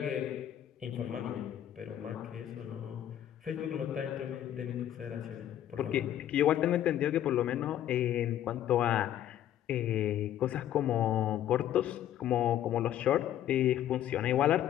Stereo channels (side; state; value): right; quieter; 11.4 dB